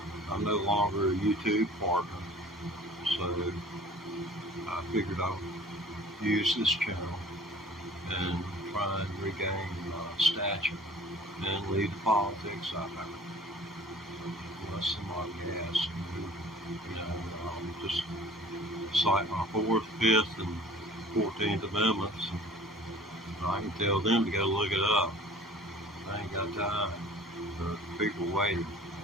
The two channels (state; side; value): normal; both; correlation 0.47